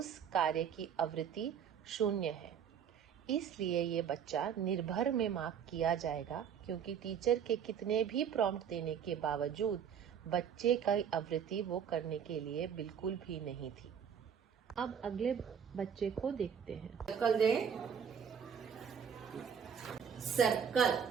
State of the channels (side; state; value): left; quieter; 7.8 dB